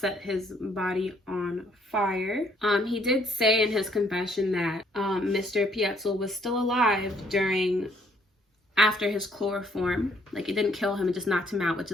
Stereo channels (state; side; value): normal; both; correlation 0.66